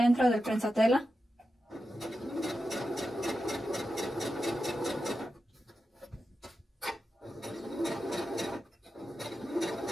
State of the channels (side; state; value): both; normal; correlation 0.90